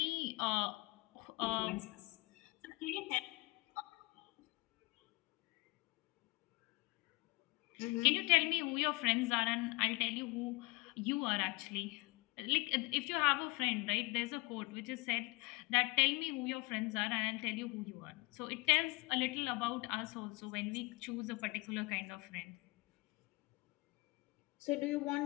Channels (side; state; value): right; quieter; 24.7 dB